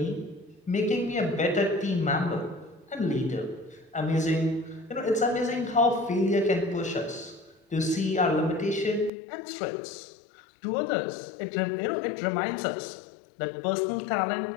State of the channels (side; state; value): right; drops out; at 9.1 s